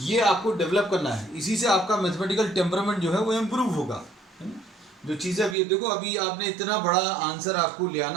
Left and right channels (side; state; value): left; drops out; at 5.6 s